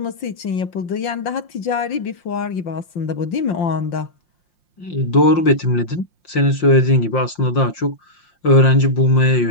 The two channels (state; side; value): late; right; 5.7 ms